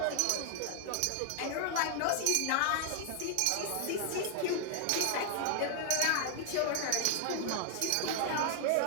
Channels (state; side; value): different; both; correlation 0.00